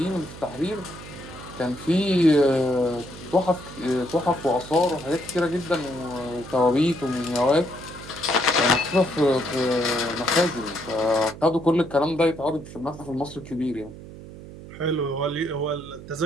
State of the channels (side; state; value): right; noise; hum, 15 dB below the sound